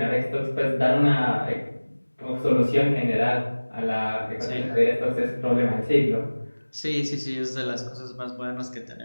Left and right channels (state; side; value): inverted; both; correlation -1.00